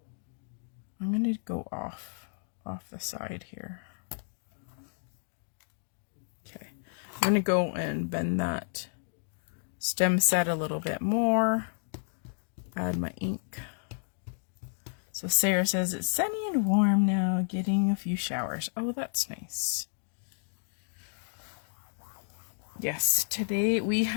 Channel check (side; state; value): right; silent; digital silence